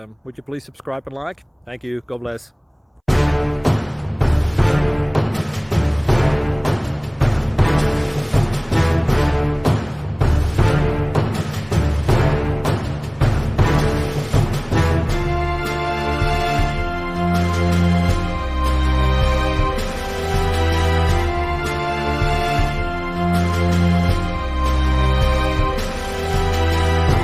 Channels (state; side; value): identical; both; correlation 1.00